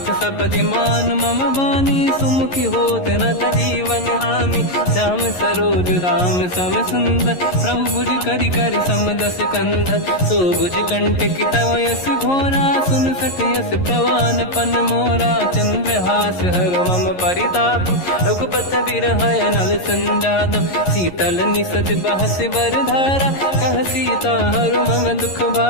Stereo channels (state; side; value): late; right; 11 ms